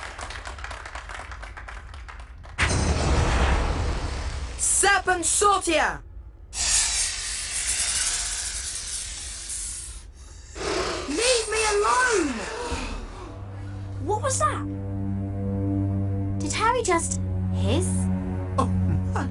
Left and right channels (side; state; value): both; identical; correlation 1.00